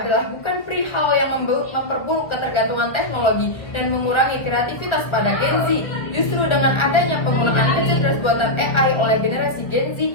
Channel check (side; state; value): right; late; 1.4 ms